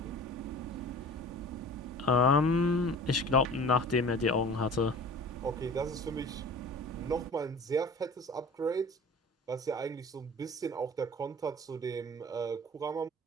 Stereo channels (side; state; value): both; normal; correlation 0.41